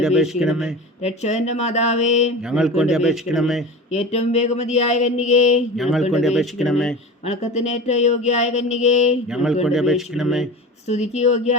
അപേക്ഷിക്കണമേ. രക്ഷകന്റെ മാതാവേ, ഞങ്ങൾക്ക് വേണ്ടി അപേക്ഷിക്കണമേ. ഏറ്റവും വേഗമതിയായ കന്യകേ, ഞങ്ങൾക്ക് വേണ്ടി അപേക്ഷിക്കണമേ. വണക്കത്തിന് ഏറ്റവും യോഗ്യയായ കന്യകേ, ഞങ്ങൾക്ക് വേണ്ടി അപേക്ഷിക്കണമേ. സ്തുതിക്ക്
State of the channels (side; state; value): both; normal; correlation 0.32